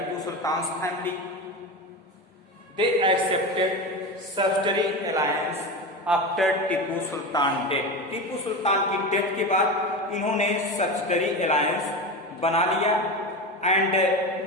Sultan's family. They accepted subsidiary alliance after Tipu Sultan death. Tipu Sultan की death के बाद इन्होंने subsidiary alliance बना लिया and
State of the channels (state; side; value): normal; both; correlation 0.23